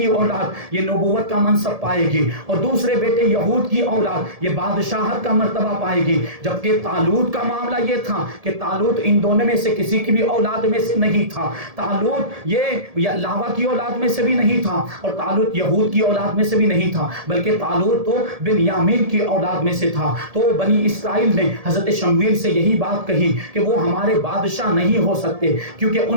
اولاد یہ نبوت کا منصب پائے گی، اور دوسرے بیٹے یہود کی اولاد یہ بادشاہت کا مرتبہ پائے گی۔ جبکہ طالوت کا معاملہ یہ تھا کہ طالوت ان دونوں میں سے کسی کی بھی اولاد میں سے نہیں تھا۔ طالوت یہ لاوا کی اولاد میں سے بھی نہیں تھا، اور طالوت یہود کی اولاد میں سے بھی نہیں تھا، بلکہ طالوت تو بنیامین کی اولاد میں سے تھا۔ تو بنی اسرائیل نے حضرت شمویل سے یہی بات کہی کہ وہ ہمارے بادشاہ نہیں ہو سکتے، کیونکہ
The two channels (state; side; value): late; left; 1.7 ms